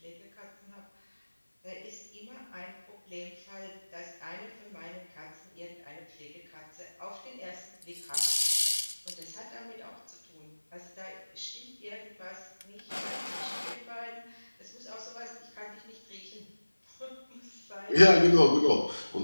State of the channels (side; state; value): both; inverted; correlation -1.00